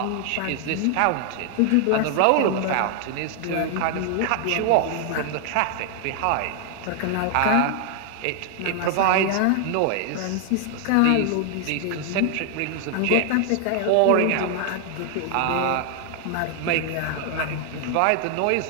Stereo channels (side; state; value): both; different; correlation 0.00